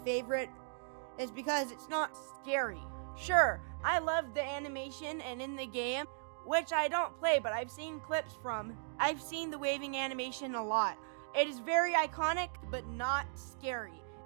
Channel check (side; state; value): left; silent; digital silence